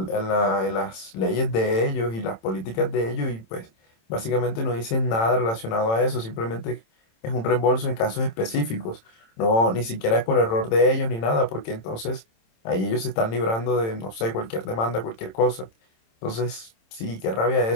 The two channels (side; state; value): right; late; 27 ms